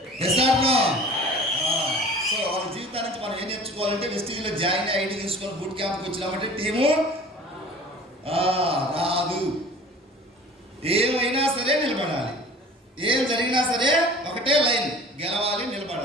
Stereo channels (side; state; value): both; normal; correlation 0.44